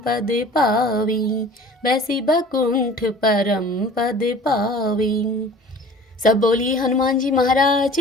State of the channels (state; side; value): normal; both; correlation 0.46